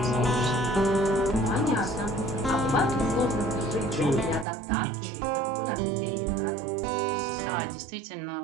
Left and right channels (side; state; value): left; drops out; at 4.5 s